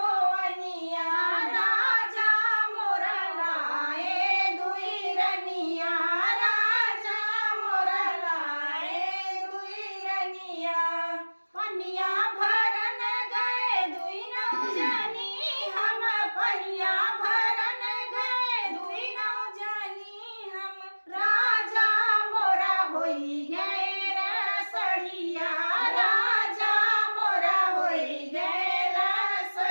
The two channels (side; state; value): both; inverted; correlation -1.00